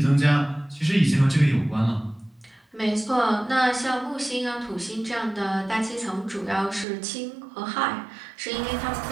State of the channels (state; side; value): drops out; left; at 6.9 s